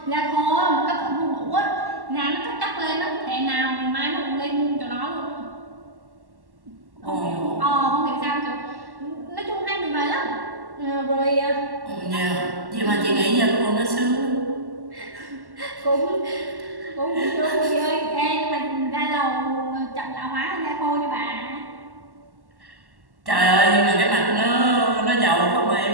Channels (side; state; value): left; late; 1.1 ms